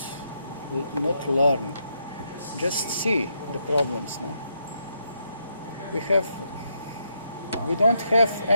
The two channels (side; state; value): both; inverted; correlation -0.79